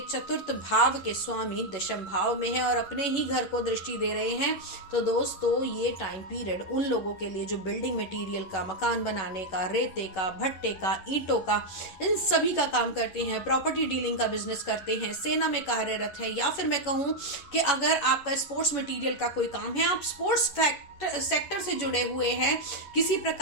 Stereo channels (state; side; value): late; right; 11 ms